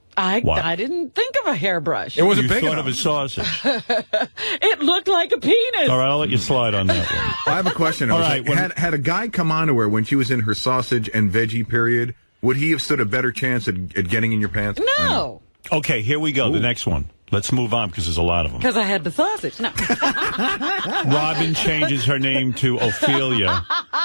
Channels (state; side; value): inverted; both; correlation -1.00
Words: I didn't think of a hairbrush. It wasn't You big thought enough. of a sausage. It looked like a penis. All right, I'll let you slide on that one. I have a question. All right, had a guy come on to her when she was in her sausage and veggie period, would he have stood a better chance at getting in your pants? No. Okay, here we go. The next one. Let's move on because there's a lot of them. Because I had the sausage. No. Robin changes her name to Ophelia.